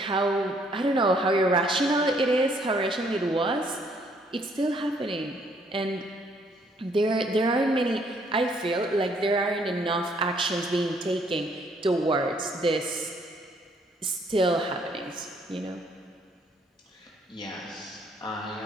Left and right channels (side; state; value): both; normal; correlation 0.66